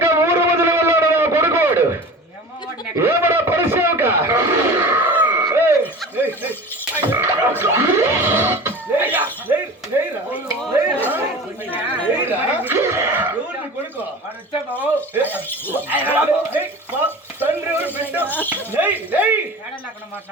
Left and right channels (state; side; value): normal; both; correlation 0.36